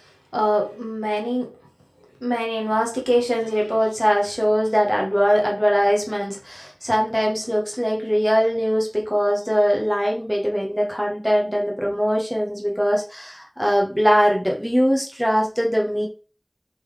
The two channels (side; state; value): both; identical; correlation 1.00